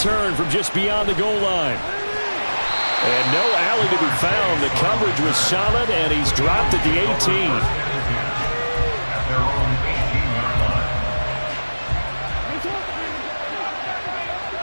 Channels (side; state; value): both; inverted; correlation -1.00